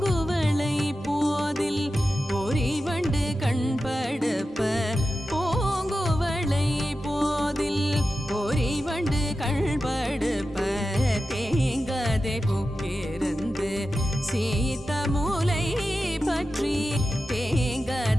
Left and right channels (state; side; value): normal; both; correlation 0.92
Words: போதில் பொறிவண்டு கண்படுப்ப பூங்குவளை போதில் பொறிவண்டு கண்படுப்ப தேங்காதே பொக்கிருந்து சீத்த மூலை பற்றி